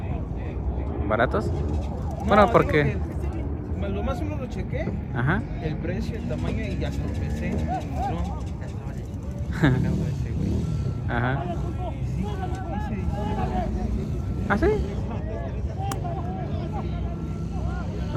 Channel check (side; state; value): both; identical; correlation 1.00